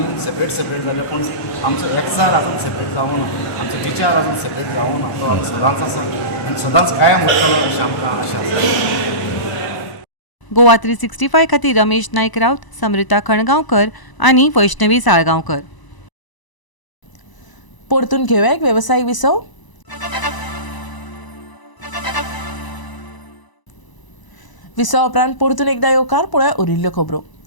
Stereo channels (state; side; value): late; right; 1.0 ms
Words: सेपरेट जाले पूण आमचो एकचार आजून सेपरेट जावूं ना, आमचो विचार आजून सेपरेट जावूं ना. तो आमी सदांच आसा आनी सदांच कायम उरतलो अशें आमकां आशा आसा. गोवा 365 खातीर रमेश नायक रावत, समृता खणगांवकर आनी वैष्णवी साळगांवकर. परतून घेवया एक वेवसायीक विसव. विसव उपरांत परतून एकदा येवकार पळोवया उरिल्ल्यो खबरो.